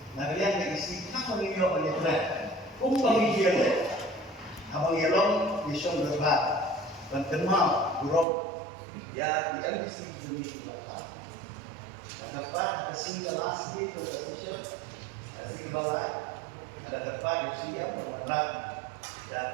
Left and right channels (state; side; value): drops out; left; at 8.2 s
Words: Nah yang isi apa ini oleh Tuhan? Pembagian abang yelong mission berbat. Dan kenal buruk ya di NBC Indonesia Barat. Dan dapat ada single last day conversation, single balai, ada dapat di sini yang mengerak